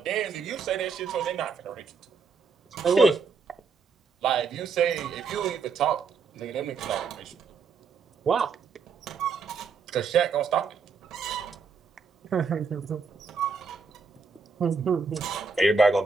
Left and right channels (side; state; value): left; quieter; 5.0 dB